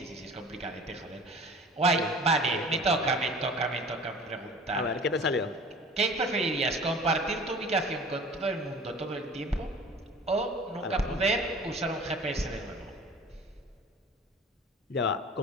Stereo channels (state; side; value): normal; both; correlation 0.43